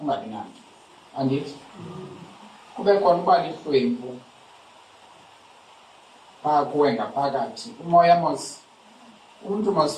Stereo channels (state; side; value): identical; both; correlation 1.00